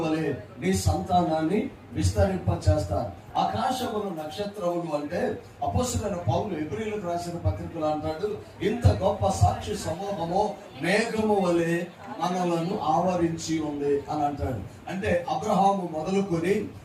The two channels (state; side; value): identical; both; correlation 1.00